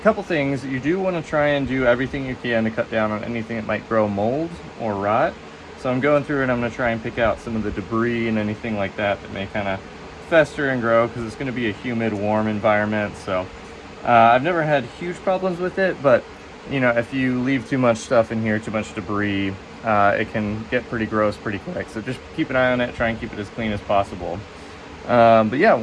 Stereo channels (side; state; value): both; identical; correlation 1.00